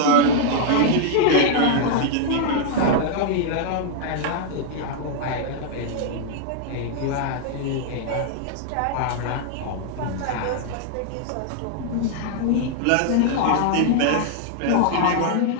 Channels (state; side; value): different; both; correlation -0.01